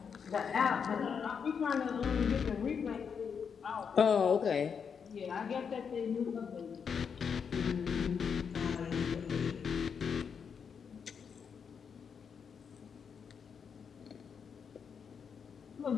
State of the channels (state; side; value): quieter; right; 6.6 dB